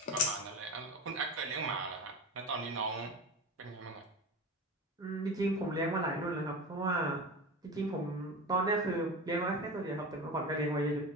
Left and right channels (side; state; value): both; normal; correlation 0.28